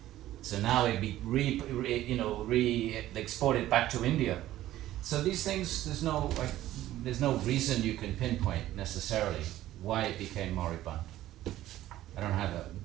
So now it be exported back to India. So these things, there's no reason you can pinpoint necessarily why it became moribund. I don't have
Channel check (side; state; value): left; quieter; 14.2 dB